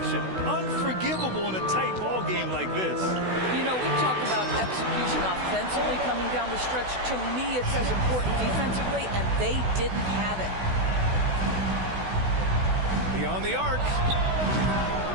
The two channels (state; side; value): late; left; 16 ms